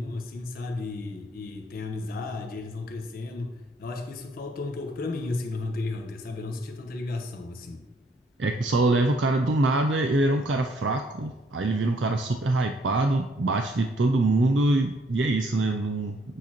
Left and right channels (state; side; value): normal; both; correlation 0.67